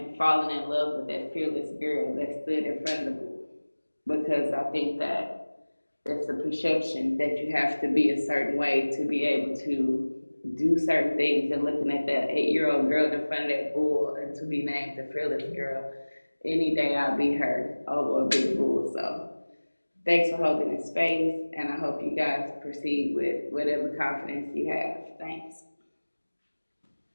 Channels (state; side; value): inverted; both; correlation -1.00